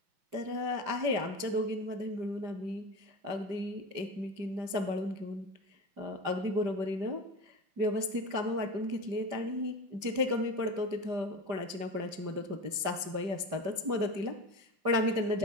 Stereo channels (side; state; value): left; late; 5.1 ms